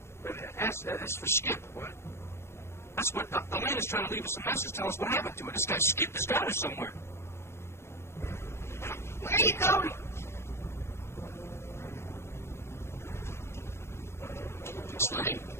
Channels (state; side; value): late; right; 0.12 ms